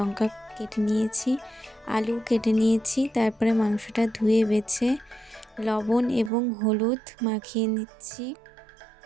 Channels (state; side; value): drops out; left; at 6.3 s